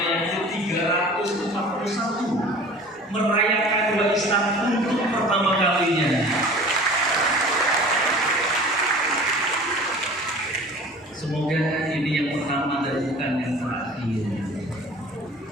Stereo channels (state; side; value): normal; both; correlation 0.43